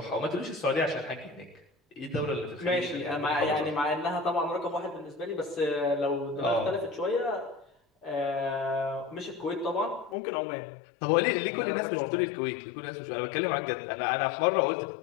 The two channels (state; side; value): drops out; right; at 10.2 s